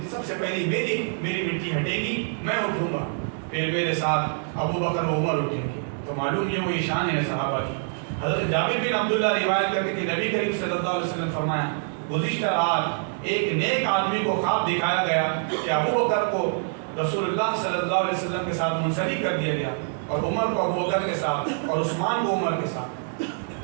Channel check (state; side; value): silent; left; digital silence